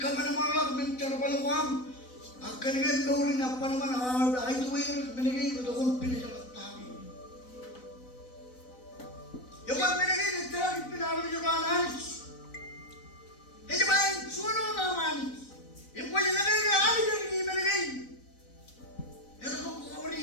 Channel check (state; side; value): late; right; 4.0 ms